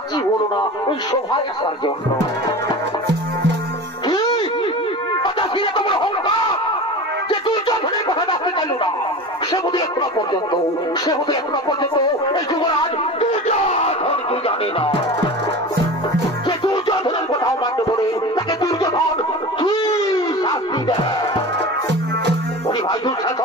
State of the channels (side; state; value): both; normal; correlation 0.32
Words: হলো না ওই সভায় আসার জন্য। যে দুর্যোধনের কথা আসতে চাইল না, সে বোধ এখনো পর্যন্ত এই যুবরাজ দুর্যোধনকে জানে না। যে দুর্যোধনের কথাও মানতে বলে তাকে দুর্যোধন কি শাস্তি দেয়? ভাই